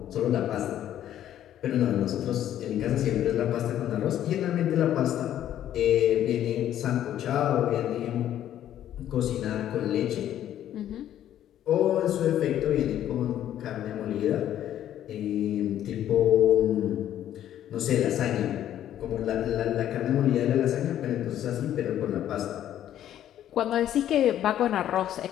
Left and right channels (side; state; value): right; quieter; 11.4 dB